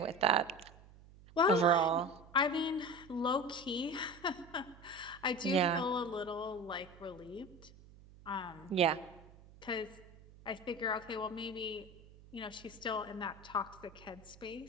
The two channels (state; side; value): noise; right; hum, 22 dB below the sound